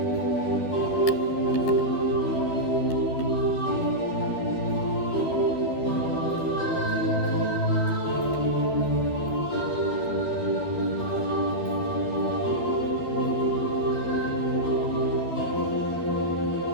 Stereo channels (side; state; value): right; late; 12 ms